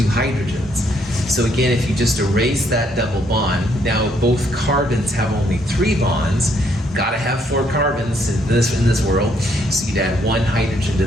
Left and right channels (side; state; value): both; normal; correlation 0.70